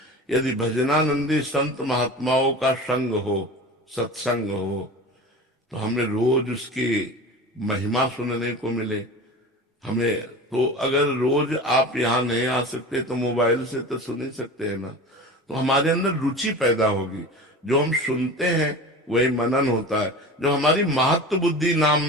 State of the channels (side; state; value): both; normal; correlation 0.33